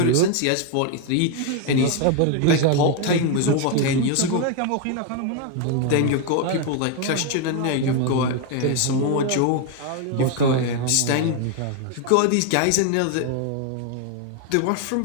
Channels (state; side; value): different; both; correlation 0.01